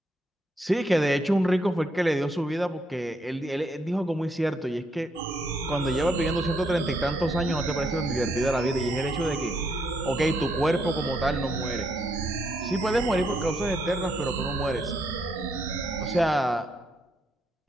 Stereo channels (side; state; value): both; normal; correlation 0.75